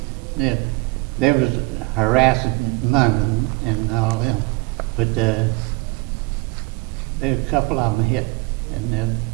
They was harassing London and all them, but there a couple of them hit in the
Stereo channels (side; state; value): left; quieter; 24.7 dB